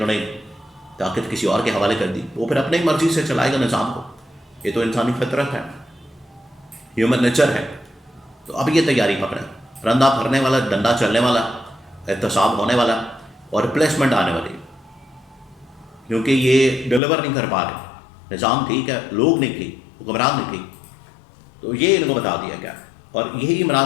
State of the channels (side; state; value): right; drops out; at 17.0 s